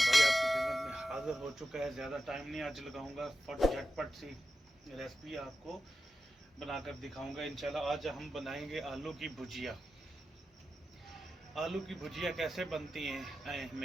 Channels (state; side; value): normal; both; correlation 0.91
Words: भाई आपकी खिदमत में हाजिर हो चुका है। ज़्यादा टाइम नहीं आज लगाऊंगा, झटपट सी रेसिपी आपको बनाकर दिखाऊंगा इंशाल्लाह। आज हम बनाएंगे आलू की भुजिया। आलू की भुजिया कैसे बनती है